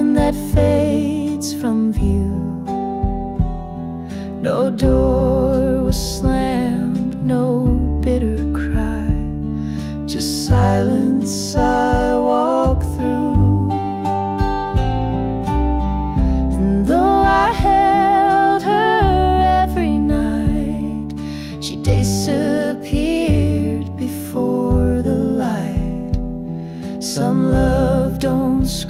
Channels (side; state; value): both; identical; correlation 1.00